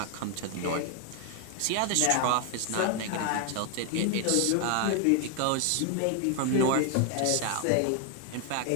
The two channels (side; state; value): both; different; correlation 0.00